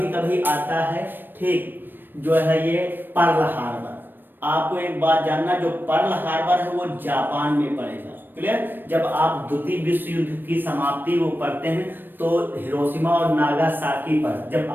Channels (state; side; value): late; left; 0.094 ms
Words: कभी आता है, ठीक, जो है ये पर्ल हार्बर। आपको एक बात जानना, जो पर्ल हार्बर है वो जापान में पड़ेगा। क्लियर? जब आप द्वितीय विश्व युद्ध की समाप्ति को पढ़ते हैं तो हिरोशिमा और नागासाकी पर जब